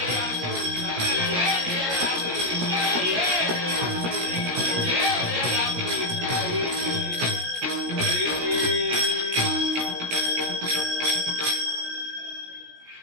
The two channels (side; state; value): left; late; 17 ms